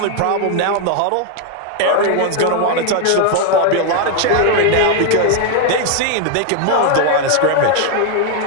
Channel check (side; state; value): both; different; correlation 0.00